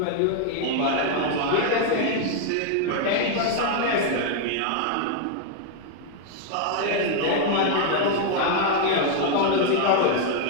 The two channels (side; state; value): both; different; correlation 0.00